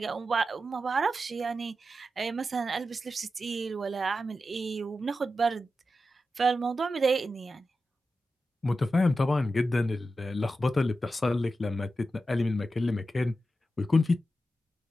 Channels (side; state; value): both; normal; correlation 0.91